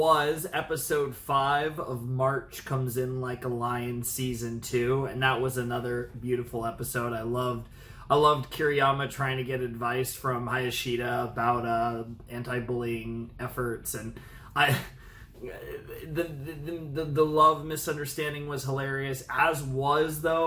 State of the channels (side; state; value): both; identical; correlation 1.00